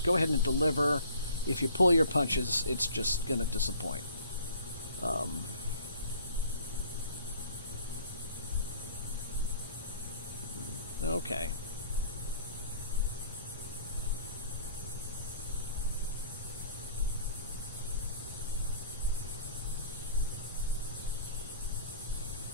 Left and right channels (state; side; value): inverted; both; correlation -0.50